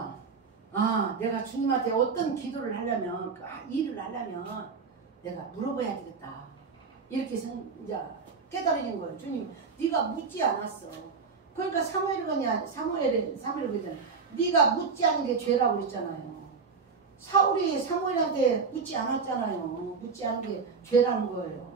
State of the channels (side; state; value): left; quieter; 5.1 dB